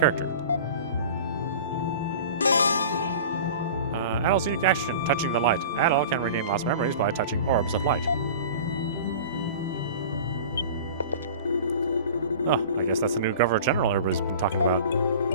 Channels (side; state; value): both; inverted; correlation -0.39